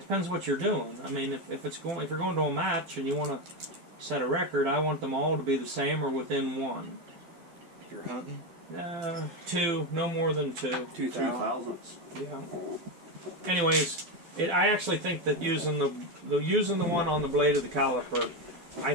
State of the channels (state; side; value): late; left; 12 ms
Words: depends what you're doing. I mean, if you're going to a match and you want to set a record, I want them all to be the same or within one. If you're hunting? 2, no more than 2. 2 thousandths. Yeah. Anyways, I actually think that using the one on the blade of the caliper, I